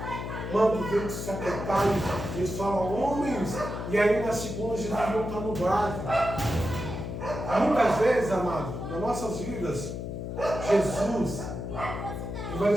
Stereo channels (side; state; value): left; noise; hum, 6 dB below the sound